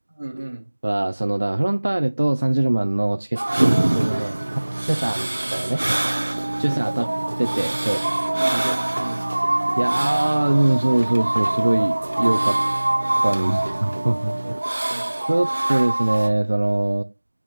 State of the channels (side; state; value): both; inverted; correlation -1.00